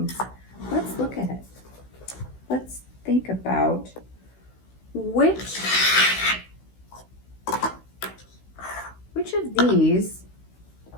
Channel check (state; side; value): late; right; 16 ms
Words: let's look at it. Let's think about which of these